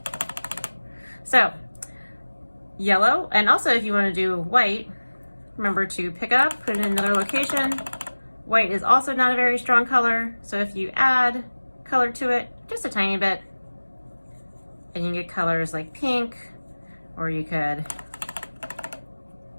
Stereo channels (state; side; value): inverted; both; correlation -1.00